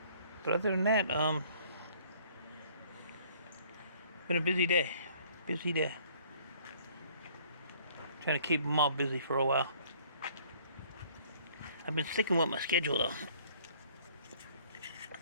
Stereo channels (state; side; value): inverted; both; correlation -0.57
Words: But other than that, been a busy day. Trying to keep them all busy for a while. I've been sticking with my schedule though.